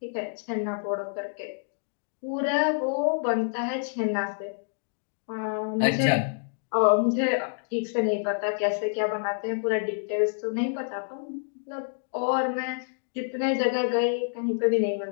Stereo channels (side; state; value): right; silent; digital silence